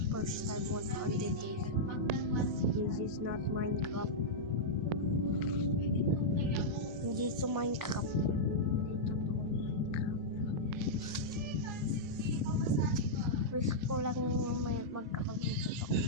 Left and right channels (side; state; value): both; normal; correlation -0.08